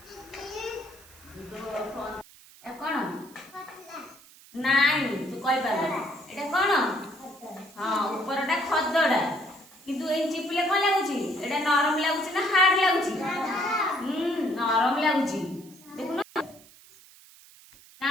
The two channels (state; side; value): noise; right; hiss, 23 dB below the sound